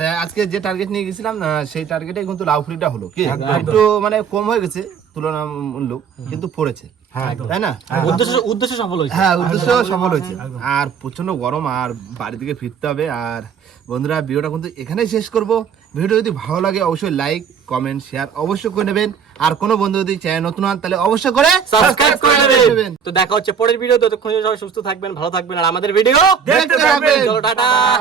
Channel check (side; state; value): left; quieter; 7.0 dB